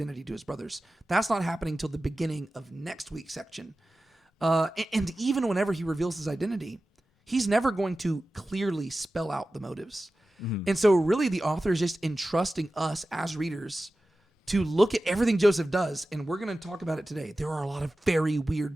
to his brothers. That's not happening till the beginning of next week's section. And even whenever he reveals his identity, he's never going to clearly spell out the motives. Mm-hmm. And so really the author is just entrusting us as readers to look at everything Joseph does. And we're going to talk about it today. There are a lot of very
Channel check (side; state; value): both; normal; correlation 0.95